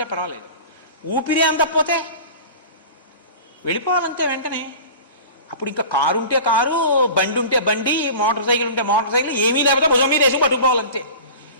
పర్వాలేదు. ఊపిరి అందకపోతే వెళ్ళిపోవాలంతే వెంటనే. అప్పుడు ఇంకా కారు ఉంటే కారు, బండి ఉంటే బండి, మోటార్ సైకిల్ ఉంటే మోటార్ సైకిల్, ఏమీ లేకపోతే భుజం మీద వేసి పట్టుకోవాలంతే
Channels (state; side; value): inverted; both; correlation -0.38